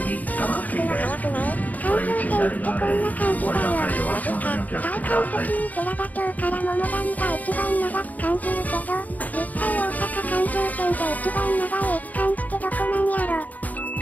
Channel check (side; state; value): right; late; 0.078 ms